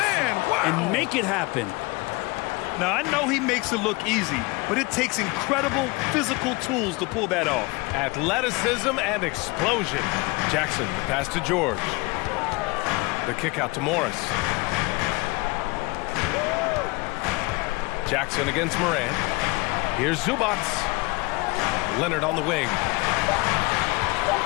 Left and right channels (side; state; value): right; quieter; 25.0 dB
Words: Wow. And make it happen. Now, I know he makes it look easy, but it takes incredible physical tools to pull that off. Athleticism and explosion. Jackson, the pass to George. The kick out to Morris. Jackson against Morant. Here's Zubac. Leonard on the wing.